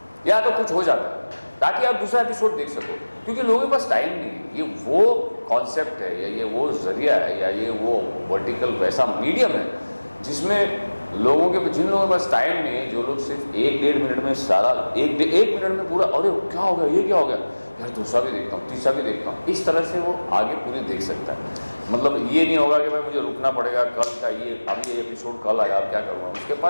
या तो कुछ हो जाता है ताकि आप दूसरा एपिसोड देख सको, क्योंकि लोगों के पास टाइम नहीं है। ये वो कॉन्सेप्ट है या ये वो जरिया है या ये वो वर्टिकल वैसा मीडियम है जिसमें लोगों के, जिन लोगों के पास टाइम नहीं है, जो लोग सिर्फ 1-1.5 मिनट में सारा एक मिनट में पूरा, अरे क्या हो गया, ये क्या हो गया यार, दूसरा भी देखता हूँ, तीसरा भी देखता हूँ, इस तरह से वो आगे पूरी देख सकता है। मतलब ये नहीं होगा कि भाई मुझे रुकना पड़ेगा, कल का ये अभी ये एपिसोड कल आया, अब क्या करूँगा। उसके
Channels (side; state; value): both; inverted; correlation -1.00